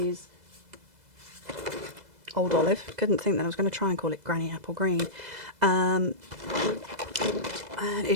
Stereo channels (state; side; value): late; left; 2.0 ms